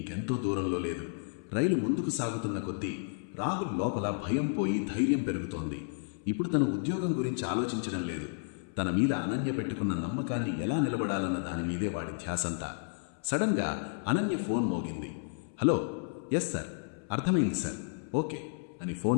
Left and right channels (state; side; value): silent; right; 56 dB below the other